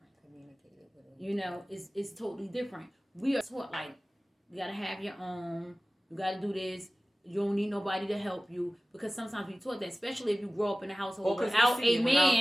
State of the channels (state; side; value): normal; both; correlation 0.97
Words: Communicated with them. You know, it's totally different. We are taught like you gotta have your own. You gotta do this. You don't need nobody to help you because sometimes we taught that, especially if you grow up in a household without a